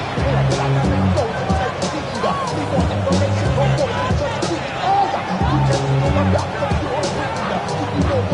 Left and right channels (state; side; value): identical; both; correlation 1.00